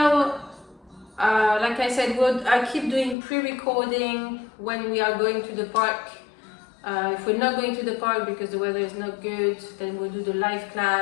like I said, I keep doing pre-recording when we are going to the park. If we're not going to the park because the weather is not good, then we'll do the live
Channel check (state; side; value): drops out; right; at 3.2 s